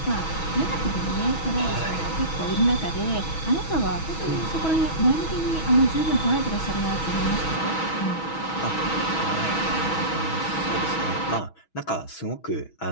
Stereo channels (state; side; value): late; right; 6.2 ms